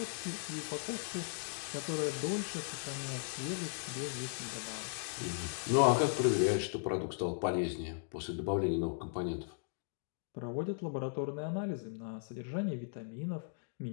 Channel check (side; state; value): right; silent; digital silence